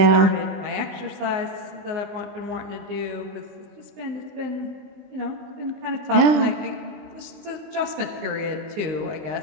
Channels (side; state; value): left; late; 19 ms